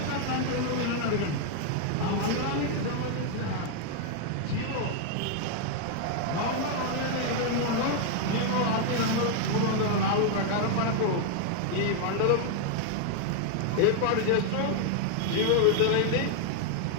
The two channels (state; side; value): different; both; correlation 0.00